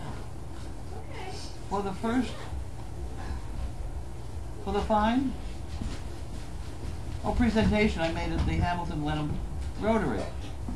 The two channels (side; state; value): both; identical; correlation 1.00